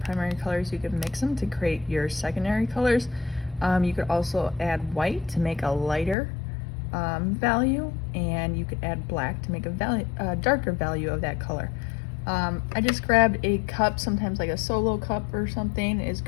colors, you can mix them to create your secondary colors. You could also add white to make a lighter value, and you could add black to make a darker value of that color. I just grabbed a cup, sometimes like a solo cup or something is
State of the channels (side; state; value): right; drops out; at 6.2 s